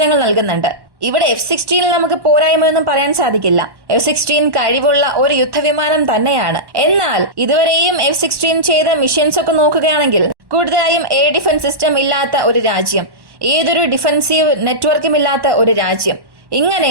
നൽകുന്നുണ്ട്. ഇവിടെ F-16 നമുക്ക് പോരായ്മയൊന്നും പറയാൻ സാധിക്കില്ല. F-16 കഴിവുള്ള ഒരു യുദ്ധവിമാനം തന്നെയാണ്. എന്നാൽ ഇതുവരെയും F-16 ചെയ്ത മിഷൻസ് ഒക്കെ നോക്കുകയാണെങ്കിൽ കൂടുതലായും എയർ ഡിഫൻസ് സിസ്റ്റം ഇല്ലാത്ത ഒരു രാജ്യം, ഏതൊരു ഡിഫൻസീവ് നെറ്റ്വർക്കും ഇല്ലാത്ത ഒരു രാജ്യം, ഇങ്ങനെ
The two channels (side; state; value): left; late; 1.1 ms